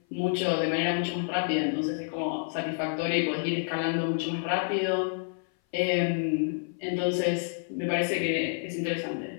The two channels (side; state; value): right; silent; 57 dB below the other